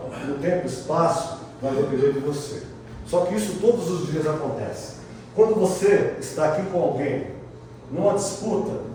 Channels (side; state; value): both; identical; correlation 1.00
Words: no tempo e espaço vai depender de você. Só que isso todos os dias acontece. Quando você está aqui com alguém, numa disputa,